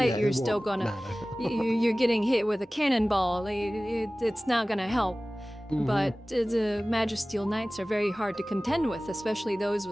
Yeah, you're it still won't gonna, matter. you're getting hit with a cannonball. It's not gonna help. Mhm. But the Magisteel Knights are very hard to contend with, especially those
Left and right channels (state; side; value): normal; both; correlation 0.98